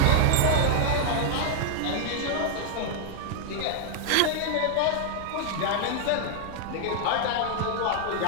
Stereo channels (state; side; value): different; both; correlation 0.00